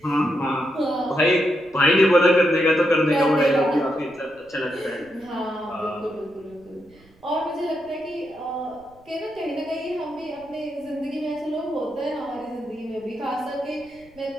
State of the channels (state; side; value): noise; right; rumble, 29 dB below the sound